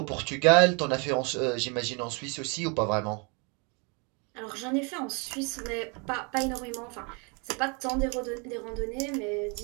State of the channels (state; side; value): quieter; left; 32.8 dB